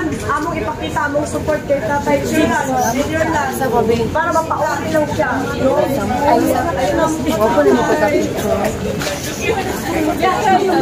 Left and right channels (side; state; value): both; identical; correlation 1.00